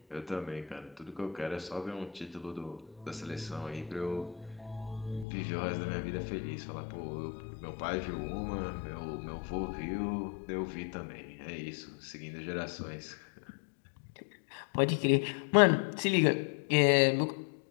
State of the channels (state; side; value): drops out; right; at 5.2 s